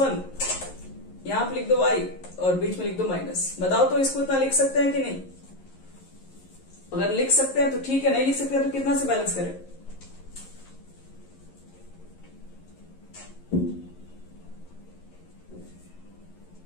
यहाँ पे लिख दो y और बीच में लिख दो माइनस। बताओ तो इसको इतना लिख सकते हैं कि नहीं? अगर लिख सकते हैं तो ठीक है, नहीं लिख सकते हैं तो कितना से बैलेंस करें?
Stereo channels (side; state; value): right; late; 11 ms